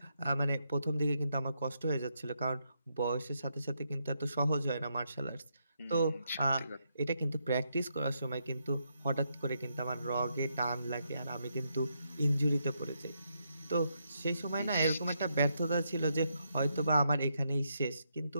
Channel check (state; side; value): inverted; both; correlation -0.79